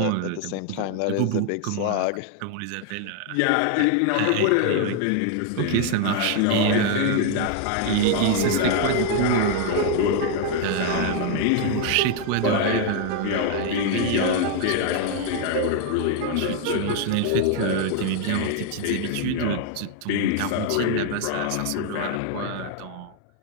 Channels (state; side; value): different; both; correlation 0.00